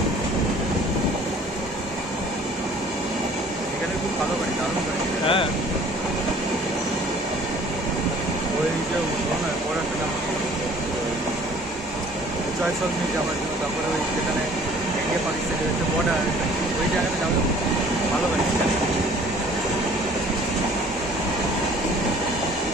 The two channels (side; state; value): both; normal; correlation 0.53